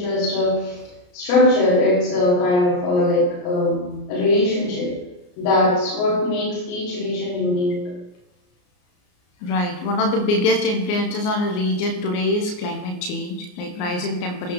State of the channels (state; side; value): late; right; 34 ms